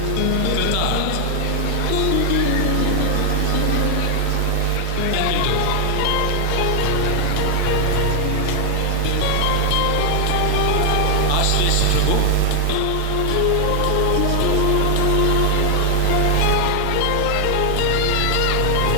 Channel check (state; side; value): different; both; correlation 0.00